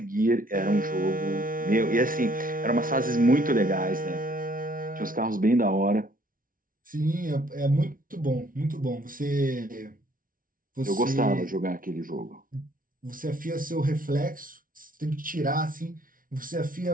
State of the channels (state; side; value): late; left; 0.40 ms